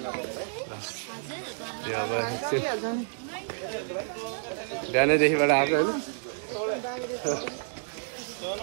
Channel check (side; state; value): left; silent; digital silence